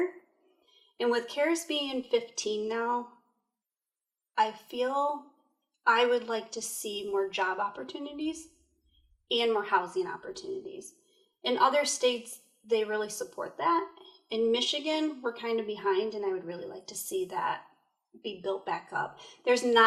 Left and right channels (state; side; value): identical; both; correlation 1.00